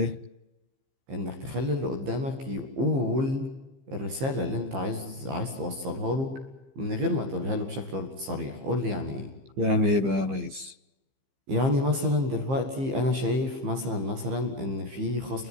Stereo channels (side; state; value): left; late; 15 ms